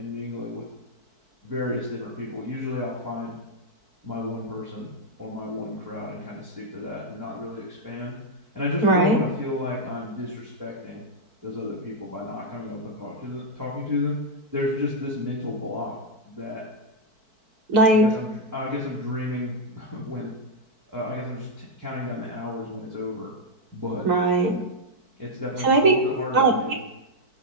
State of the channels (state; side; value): late; left; 4.5 ms